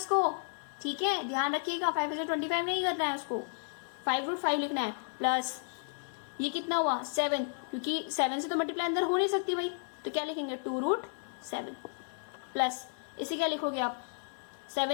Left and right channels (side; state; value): right; silent; digital silence